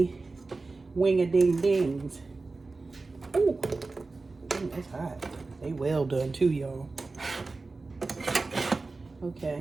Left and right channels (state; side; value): quieter; left; 3.7 dB